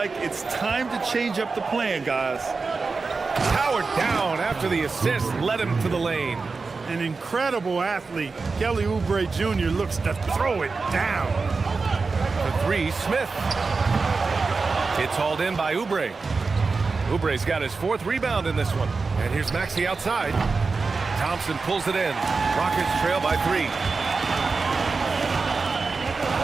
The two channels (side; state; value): left; quieter; 4.3 dB